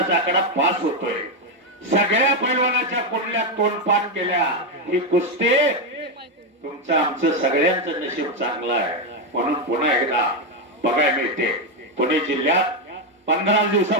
आकडा पास होतोय. सगळ्या पैलवानाच्या कुंडल्यात तोंडपाठ केल्या. ही कुस्ती तुमचं आमचं सगळ्यांचं नशीब चांगलं आहे म्हणून पुन्हा एकदा बघायला मिळते. पुणे जिल्ह्यात 15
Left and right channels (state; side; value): normal; both; correlation 0.06